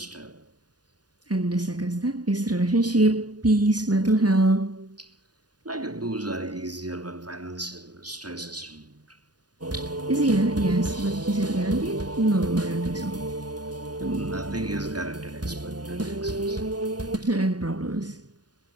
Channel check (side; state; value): left; late; 0.69 ms